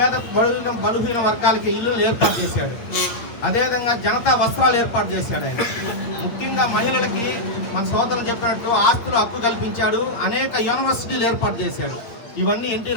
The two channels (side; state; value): right; late; 8.7 ms